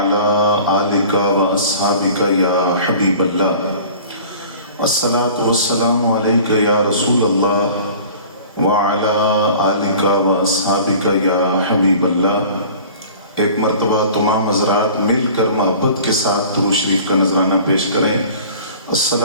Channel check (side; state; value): both; inverted; correlation -0.44